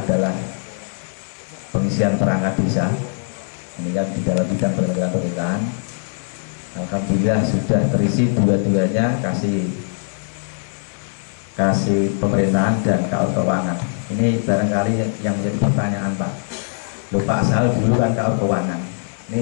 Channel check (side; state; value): right; silent; 65 dB below the other